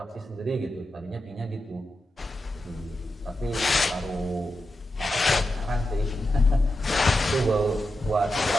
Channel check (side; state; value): both; normal; correlation 0.89